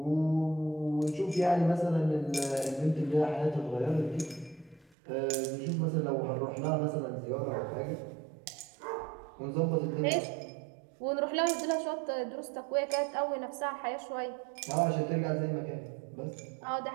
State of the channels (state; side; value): drops out; left; at 5.0 s